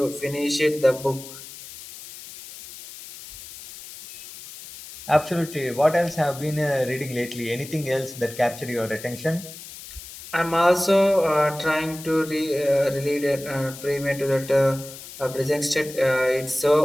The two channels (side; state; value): left; noise; hiss, 15 dB below the sound